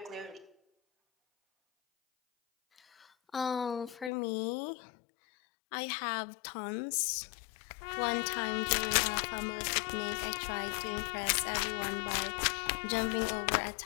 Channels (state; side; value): drops out; right; at 4.1 s